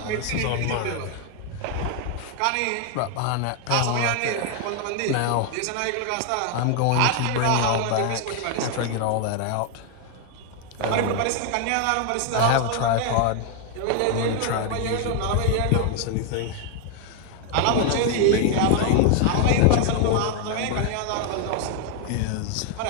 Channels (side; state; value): both; different; correlation 0.00